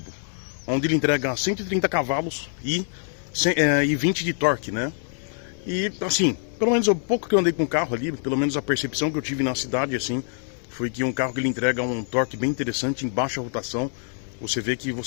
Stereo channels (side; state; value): right; silent; 61 dB below the other